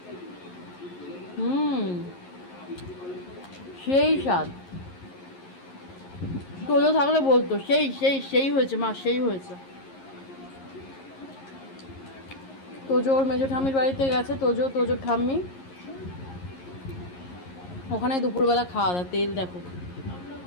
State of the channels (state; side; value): late; right; 11 ms